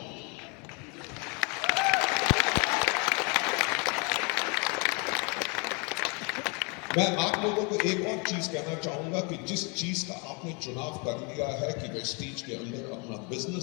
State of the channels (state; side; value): quieter; right; 32.7 dB